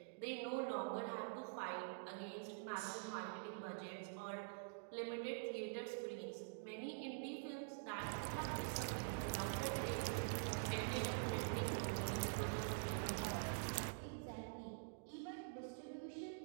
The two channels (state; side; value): silent; left; digital silence